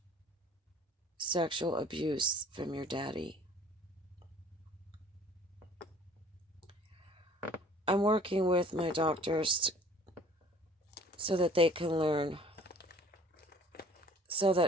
sexual abuse from your daddy. I'm working with my doctors so that they can learn, so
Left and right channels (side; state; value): both; normal; correlation 0.51